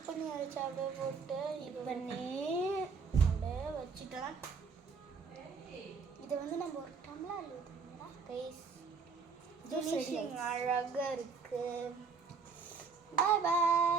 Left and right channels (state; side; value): quieter; left; 5.1 dB